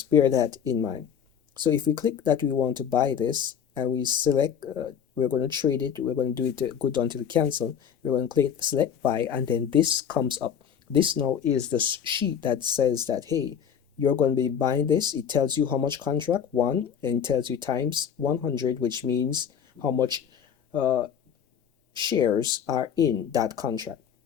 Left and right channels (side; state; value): right; quieter; 8.2 dB